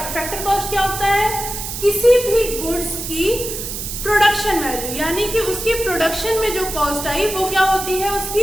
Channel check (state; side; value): noise; right; hiss, 6 dB below the sound